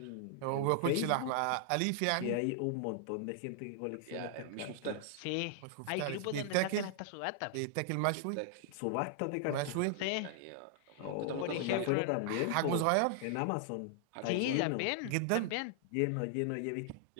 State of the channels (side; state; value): both; different; correlation 0.00